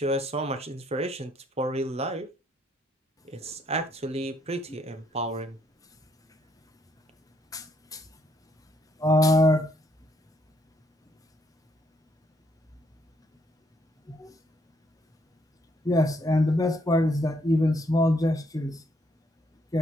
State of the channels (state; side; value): normal; both; correlation 0.71